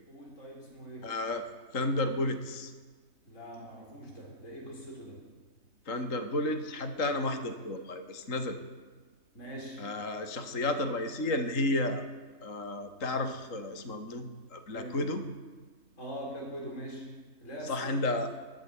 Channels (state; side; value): late; right; 3.2 ms